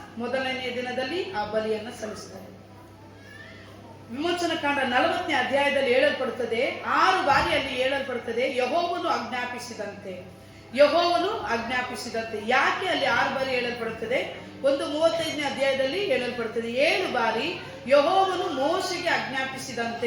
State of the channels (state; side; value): identical; both; correlation 1.00